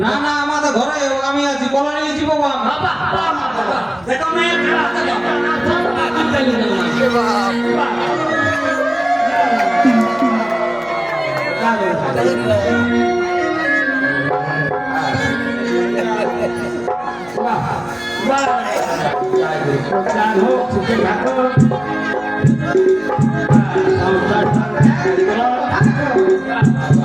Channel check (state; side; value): noise; left; hum, 26 dB below the sound